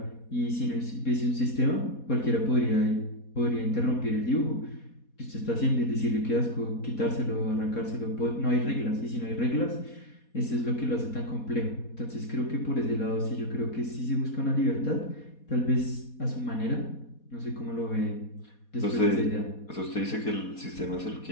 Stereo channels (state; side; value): late; right; 4.2 ms